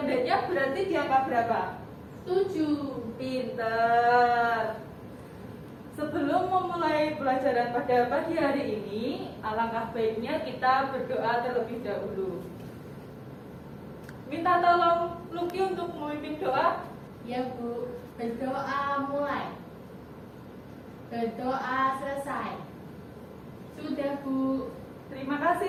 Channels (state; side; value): identical; both; correlation 1.00